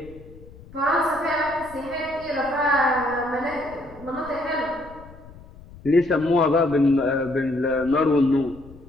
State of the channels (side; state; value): left; noise; rumble, 20 dB below the sound